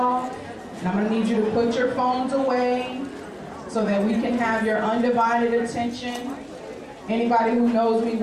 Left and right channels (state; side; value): identical; both; correlation 1.00